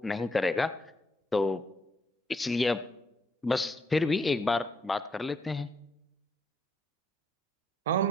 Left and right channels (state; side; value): normal; both; correlation 0.71